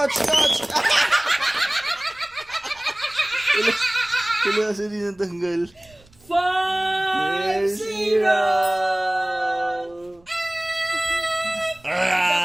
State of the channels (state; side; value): noise; right; rumble, 29 dB below the sound